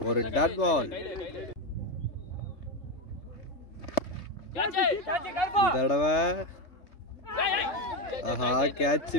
ஒரு டாட் பால். இந்த தடவை ஆஹா கேட்ச்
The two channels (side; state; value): right; late; 3.3 ms